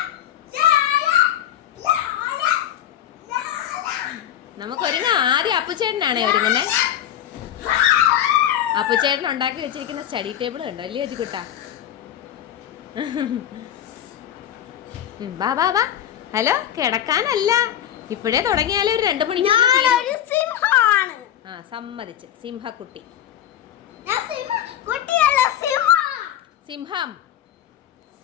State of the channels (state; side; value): quieter; right; 11.1 dB